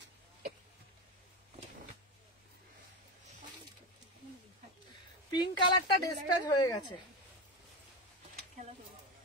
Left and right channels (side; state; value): both; normal; correlation 0.16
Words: পিঙ্ক কালারটা ডিসপ্যাচ হয়ে গেছে। খেলা করো।